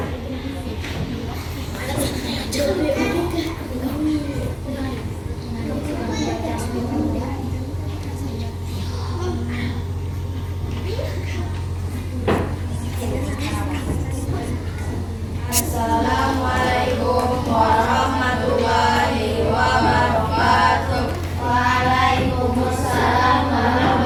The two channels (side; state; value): both; identical; correlation 1.00